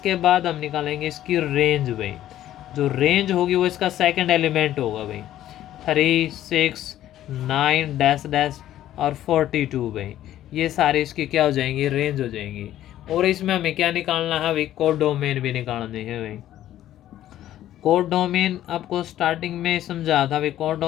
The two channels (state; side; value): quieter; right; 12.7 dB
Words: बाद हम निकालेंगे इसकी रेंज भाई, जो रेंज होगी वो इसका सेकंड एलिमेंट होगा भाई, 3 6 9 डैश डैश और 42 भाई, ये सारे इसकी क्या हो जाएंगी, रेंज हो जाएंगी। और इसमें हमें क्या निकालना है भाई, कोड डोमेन भी निकालने हैं भाई। कोड डोमेन आपको स्टार्टिंग में समझा था भाई, कोड